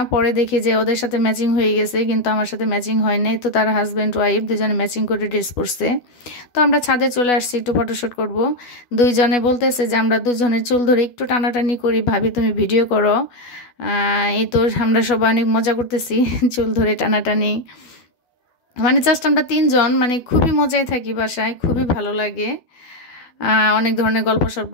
পরে দেখি যে ওদের সাথে ম্যাচিং হয়ে গেছে, কিন্তু আমার সাথে ম্যাচিং হয় নাই। তো তার হাজব্যান্ড ওয়াইফ দুজনে ম্যাচিং করে ড্রেস পরছে। তো আমরা ছাদে চলে আসছি একটু ফটোশ্যুট করব। দুইজনে বলতেছে যে আমরা দুজনের চুল ধরে একটু টানাটানি করি, ভাবি তুমি ভিডিও করো। এই তো আমরা সবাই অনেক মজা করতেছি চুল ধরে টানাটানি। মানে জাস্ট আমরা 3জন মানে খুবই মজায় থাকি বাসায়, খুবই ভালো লাগে। অনেক ধরনের গল্প সল্প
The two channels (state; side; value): late; right; 12 ms